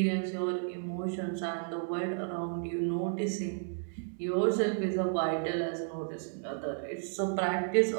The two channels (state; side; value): silent; left; digital silence